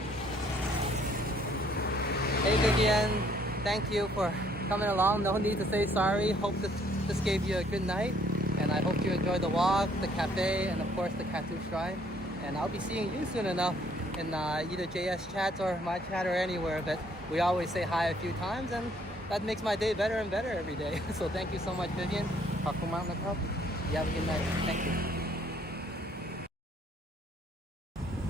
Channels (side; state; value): both; normal; correlation 0.63